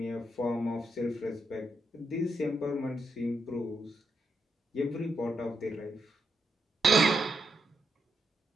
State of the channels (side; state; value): both; normal; correlation 0.82